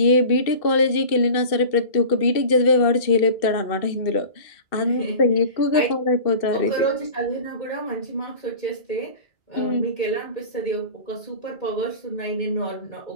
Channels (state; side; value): late; right; 2.6 ms